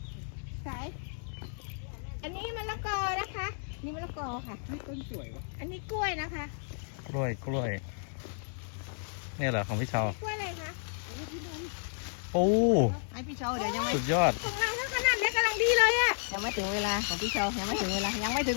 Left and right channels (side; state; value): right; silent; digital silence